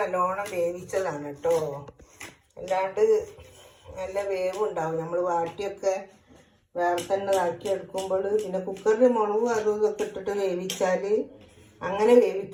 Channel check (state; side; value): identical; both; correlation 1.00